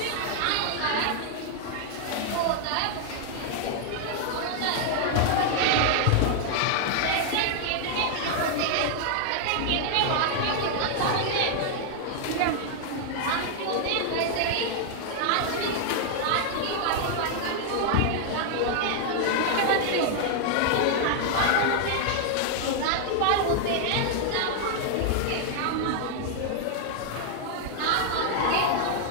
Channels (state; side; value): different; both; correlation 0.00